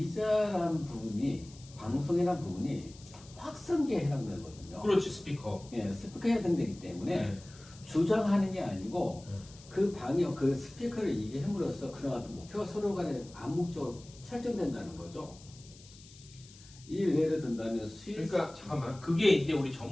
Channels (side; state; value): left; noise; hiss, 21 dB below the sound